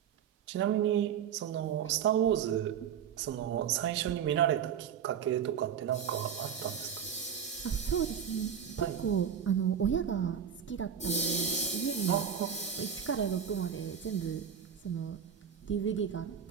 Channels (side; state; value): left; quieter; 8.1 dB